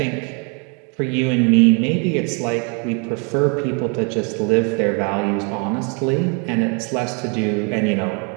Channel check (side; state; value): left; quieter; 35.6 dB